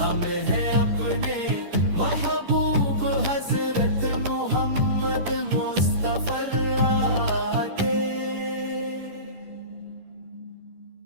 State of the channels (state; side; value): late; left; 10 ms